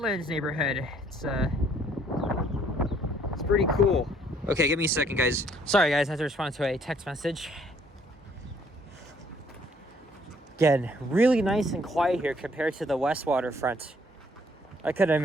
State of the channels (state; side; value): normal; both; correlation 0.63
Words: neighborhood. It's It's pretty cool. Okay, give me a second, guys. Sorry, guys, I have to respond to a text message. Again, really nice and quiet here compared to the West Waterfront. I could